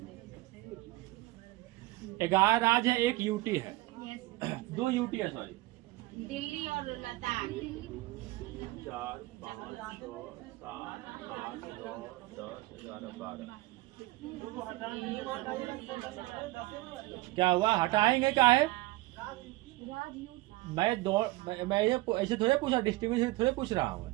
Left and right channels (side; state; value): left; quieter; 19.9 dB